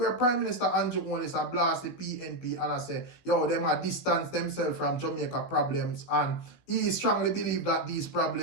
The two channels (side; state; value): right; late; 17 ms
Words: Prime Minister Andrew Holness blast the PNP and I say, yo, them are distance themselves from Jamaica problems, and he strongly believe that these